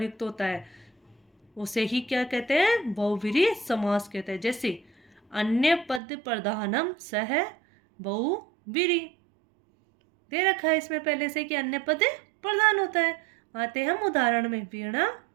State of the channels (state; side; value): drops out; left; at 6.0 s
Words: होता है, उसे ही क्या कहते हैं? बहुब्रीहि समास कहते हैं। जैसे अन्य पद प्रधानम सह बहुब्रीहि, दे रखा है इसमें पहले से कि अन्य पद प्रधान होता है। आते हम उदाहरण में। वीणा